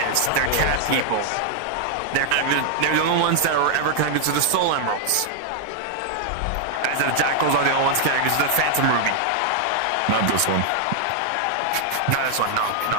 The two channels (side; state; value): both; different; correlation 0.00